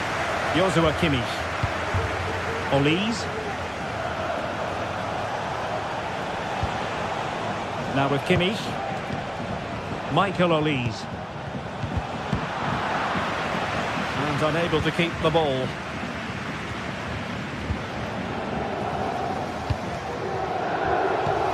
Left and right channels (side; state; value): both; identical; correlation 1.00